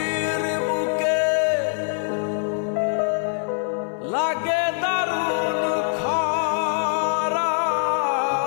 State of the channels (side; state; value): right; silent; 60 dB below the other